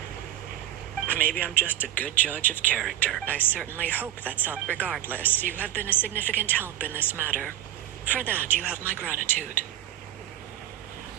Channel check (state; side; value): quieter; left; 13.1 dB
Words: Maybe I'm just a good judge of character. I certainly hope that's all. Regardless, you have been a significant help in this matter. For that, you have my gratitude.